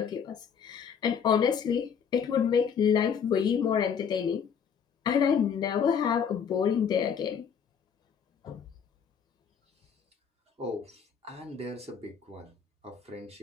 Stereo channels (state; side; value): quieter; right; 7.2 dB